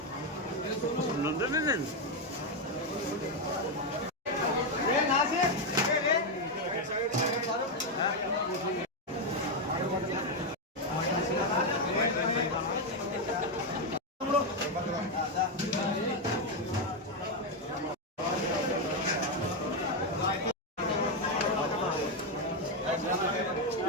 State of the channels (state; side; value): normal; both; correlation 0.05